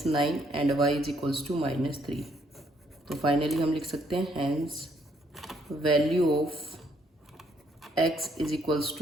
9 and y is equals to minus 3। तो फाइनली हम लिख सकते हैं hence value of x is equals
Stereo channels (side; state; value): both; normal; correlation 0.70